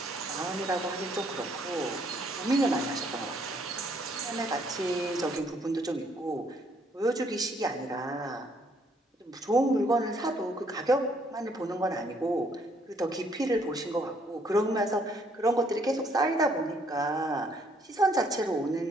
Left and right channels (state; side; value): normal; both; correlation 0.67